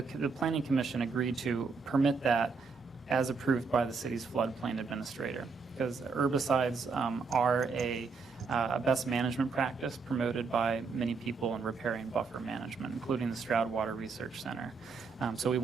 The Planning Commission agreed to permit that as approved by the city's floodplain administrator, because herbicides are a best management practice promoted by many people in riparian buffer management, including the Stroud Water Research Center. So we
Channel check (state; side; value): quieter; left; 4.7 dB